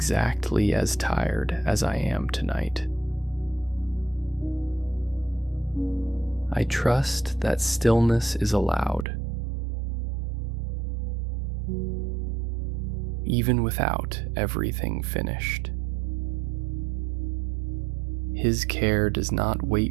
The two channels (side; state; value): left; drops out; at 9.1 s